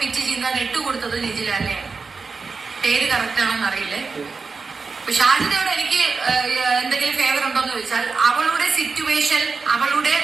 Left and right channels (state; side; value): quieter; left; 4.6 dB